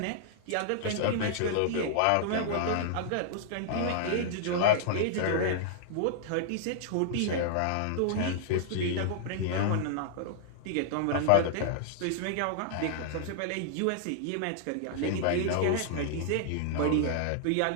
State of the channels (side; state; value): both; different; correlation -0.01